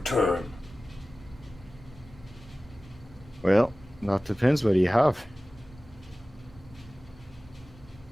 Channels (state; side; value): normal; both; correlation 0.97